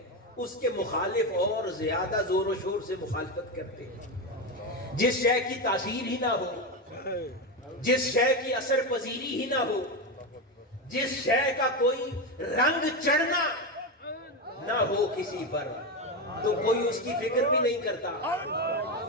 اس کے مخالف اور زیادہ زور و شور سے مخالفت کرتے ہیں، جس شے کی تاثیر ہی نہ ہو، جس شے کی اثر پذیری ہی نہ ہو، جس شے کا کوئی رنگ چڑھنا نہ ہو کسی پر، تو کوئی اس کی فکر بھی نہیں کرتا،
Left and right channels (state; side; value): normal; both; correlation 0.14